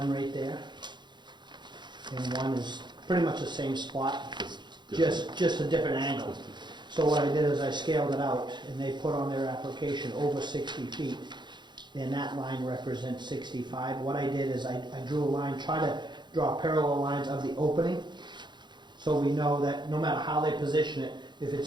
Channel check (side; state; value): left; late; 0.22 ms